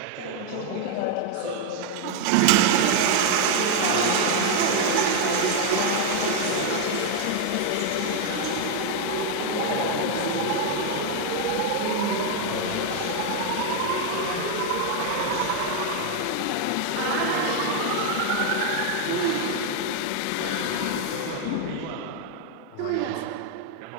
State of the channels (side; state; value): both; different; correlation 0.00